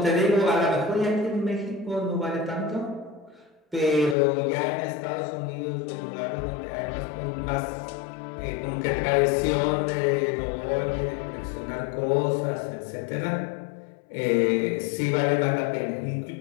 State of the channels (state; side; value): drops out; right; at 4.2 s